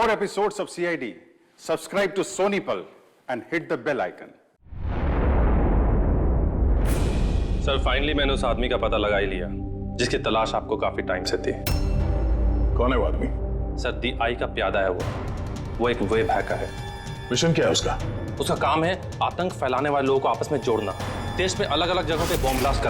episodes of CID, subscribe to Sony Pal and hit the bell icon. Sir finally मैंने उस आदमी का पता लगा ही लिया जिसकी तलाश आपको काफी टाइम से थी। कौन है वो आदमी? सर दी आई का प्यादा है वो एक वेब हैकर है। मिशन क्या है उसका? उसका काम है आतंक फैलाने वाले लोगों को आपस में जोड़ना, देश में अलग अलग जगहों पे बॉम्ब ब्लास्ट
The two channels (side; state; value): both; identical; correlation 1.00